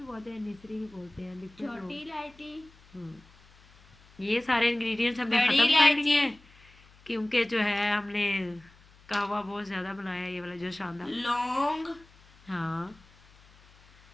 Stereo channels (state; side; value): noise; left; hum, 27 dB below the sound